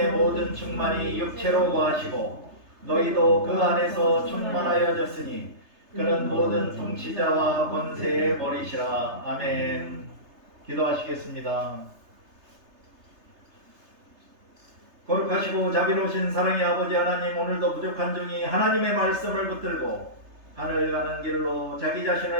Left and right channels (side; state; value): left; late; 3.3 ms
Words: 모든 충만이 육체로 거하시고 너희도 그 안에서 충만하여졌으니 그는 모든 통치자와 권세의 머리시라. 아멘. 기도하시겠습니다. 거룩하시고 자비로우신 사랑의 아버지 하나님, 오늘도 부족한 중이 하나님의 말씀을 붙들고 하늘 가는 길로 자기